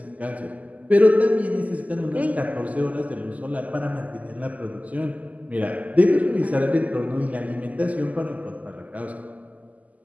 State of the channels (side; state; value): left; late; 0.075 ms